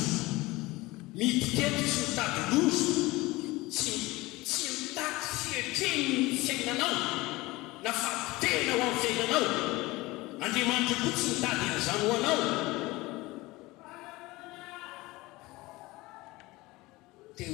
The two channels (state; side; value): quieter; right; 20.9 dB